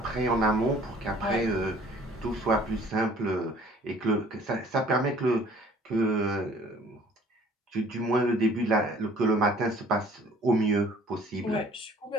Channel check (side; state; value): both; normal; correlation 0.53